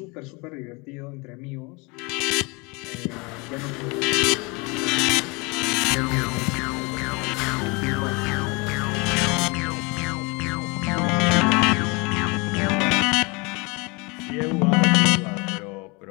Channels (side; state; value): right; quieter; 28.1 dB